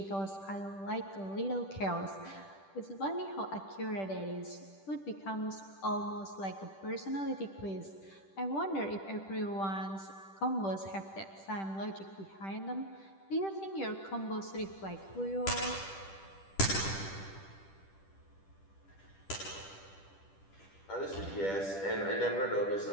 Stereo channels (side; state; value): right; late; 10 ms